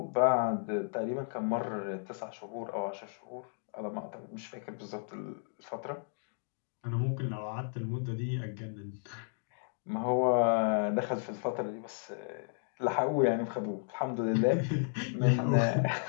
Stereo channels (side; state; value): right; silent; digital silence